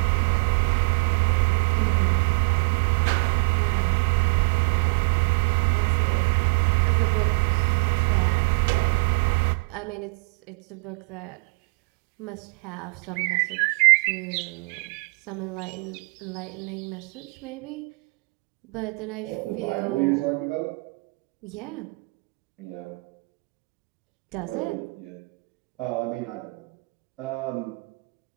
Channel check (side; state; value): left; quieter; 30.2 dB